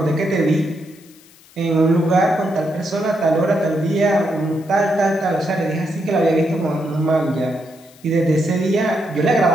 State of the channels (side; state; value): left; noise; hiss, 26 dB below the sound